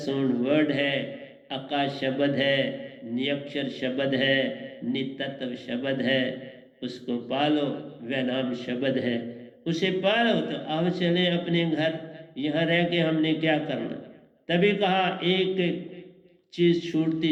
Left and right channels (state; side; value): identical; both; correlation 1.00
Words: सोन वर्ड है, आकाश शब्द है, नियक्षर शब्द है, नितत्व शब्द है। उसको पालो, वह नाम शब्द है, उसे पालो। तो अब चले अपने घर, यहाँ रह के हमने क्या करना। तभी कहा एक एक चीज